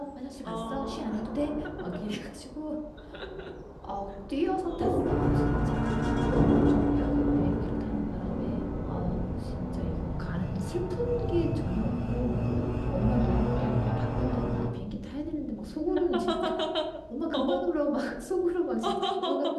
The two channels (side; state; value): both; identical; correlation 1.00